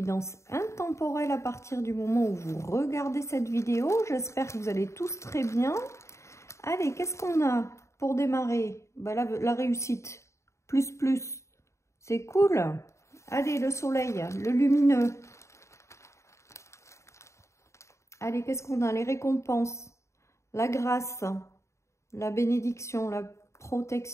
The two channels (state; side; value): late; right; 0.14 ms